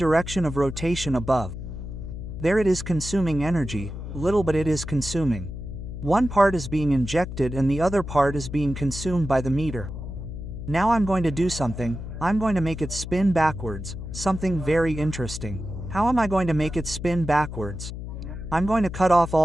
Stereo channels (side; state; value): left; noise; hum, 8 dB below the sound